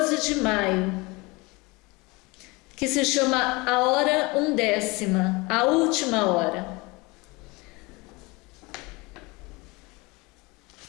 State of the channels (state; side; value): quieter; right; 25.0 dB